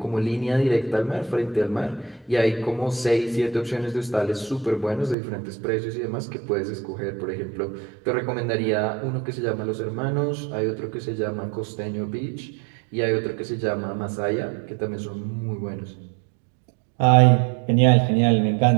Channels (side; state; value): left; drops out; at 5.2 s